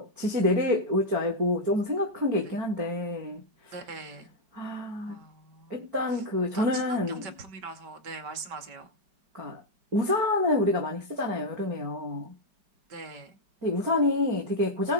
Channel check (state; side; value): late; left; 5.2 ms